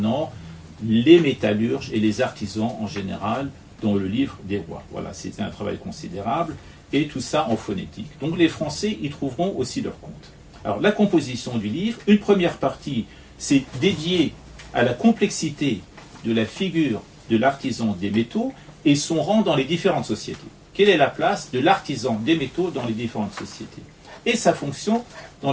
les métallurges et les artisans en général dans le livre des rois. Voilà, c'était un travail considérable et tout ça en phonétique. Donc les Français y trouveront aussi leur compte. Alors la composition du livre, une première partie, c'est dédiée à la complexité de la figure de l'artisan des métaux et son rang dans les différentes sociétés. Quelle est la place de l'artisan des métaux dans les différentes sociétés et sa fonction dans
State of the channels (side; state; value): both; identical; correlation 1.00